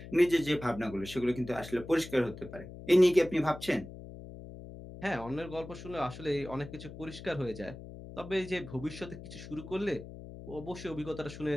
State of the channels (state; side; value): noise; left; hum, 13 dB below the sound